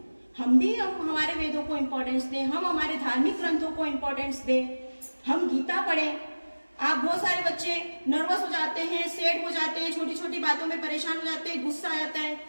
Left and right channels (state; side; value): inverted; both; correlation -1.00